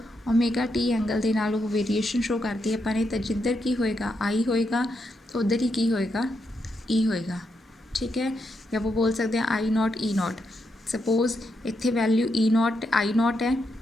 ओमेगा टी एंगल दे नाल वो वेरीएशन शो करती है अपने, तो जिधर की होएगा आई होएगा उधर ही की होएगा ई होएगा, ठीक है। या वो बोल सकते हैं I not E not. Suppose इत्थे value E not I not है,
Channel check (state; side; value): normal; both; correlation 0.82